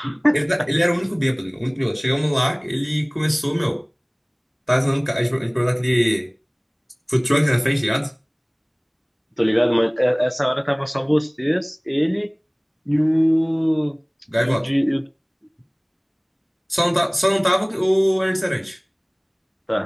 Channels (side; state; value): both; identical; correlation 1.00